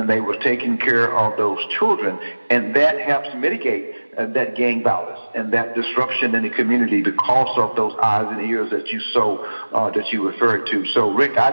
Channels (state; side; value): inverted; both; correlation -1.00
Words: they were taking care of those children. And that helps mitigate that gang violence and that disruption in the community because of those eyes and ears that you referred to. So, Rick, I